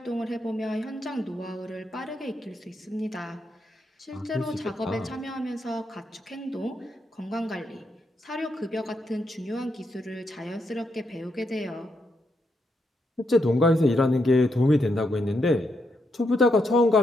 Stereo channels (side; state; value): both; normal; correlation 0.81